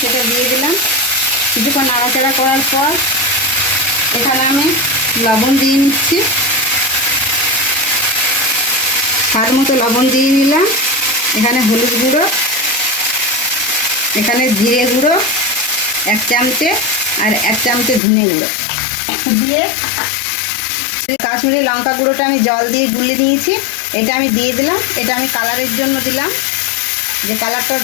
সেটা দিয়ে দিলাম। কিছুক্ষণ নাড়াচাড়া করার পর এখানে আমি লবণ দিয়ে নিচ্ছি। স্বাদ মতো লবণ দিয়ে নিলাম। এখানে হলুদ গুঁড়ো, এখানে জিরে গুঁড়ো 1 চামচে আর 1 চামচে ধনে গুঁড়ো দিয়ে, কাশ্মীরি লঙ্কা গুঁড়োটা আমি জল দিয়ে গুলিয়ে নিয়েছি, এটা আমি দিয়ে দিলাম। এটা আমি কালারের জন্য দিলাম, যে কালারটা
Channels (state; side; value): drops out; right; at 18.0 s